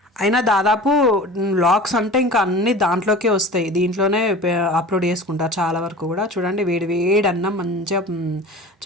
అయినా దాదాపు వ్లాగ్స్ అంటే ఇంకా అన్ని దాంట్లోకే వస్తాయి, దీంట్లోనే అప్లోడ్ చేసుకుంటా చాలా వరకు కూడా. చూడండి, వేడి వేడి అన్నం, మంచిగా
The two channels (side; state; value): both; normal; correlation 0.38